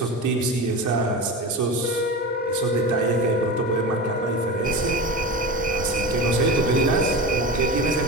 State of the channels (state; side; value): normal; both; correlation 0.27